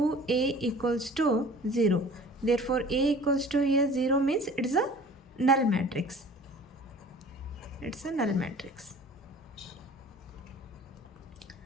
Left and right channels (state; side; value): normal; both; correlation 0.46